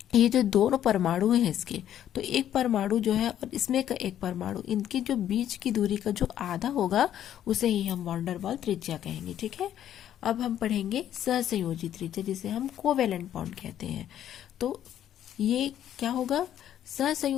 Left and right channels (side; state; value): right; quieter; 10.9 dB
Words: ये जो दोनों परमाणु हैं इसके, तो एक परमाणु जो है और इसमें का एक परमाणु, इनके जो बीच की दूरी का जो आधा होगा उसे ही हम वॉन डेर वाल त्रिज्या कहेंगे। ठीक है, अब हम पढ़ेंगे सहसंयोजी त्रिज्या, जिसे हम कोवेलेंट बॉन्ड कहते हैं। तो ये क्या होगा,